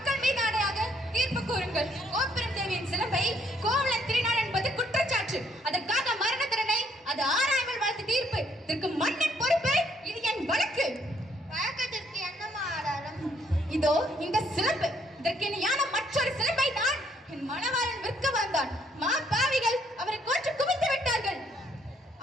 மீது ஆணையாக தீர்ப்பு கூறுங்கள். கோப்பெரும் தேவியின் சிலம்பை கோவலன் திருநாள் என்பது குற்றச்சாட்டு. அதற்காக மரண தண்டனை, அது ஆராய்மல் வழக்கு தீர்ப்பு. இதற்கு மன்னன் பொறுப்பு. இது என் வழக்கு. வழக்கத்திற்கு என்னமா ஆதாரம்? இதோ இந்த சிலம்பு. இதற்கு இணையான மற்றொரு சிலம்பை தான் என் மணவாளன் விற்க வந்தான். மா பாவிகள் அவரை கொன்று குவித்து விட்டார்கள்.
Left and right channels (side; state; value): both; normal; correlation 0.69